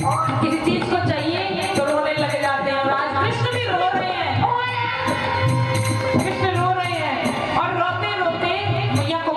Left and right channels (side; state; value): both; identical; correlation 1.00